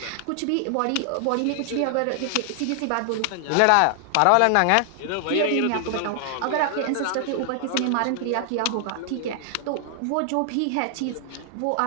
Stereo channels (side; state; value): both; different; correlation 0.00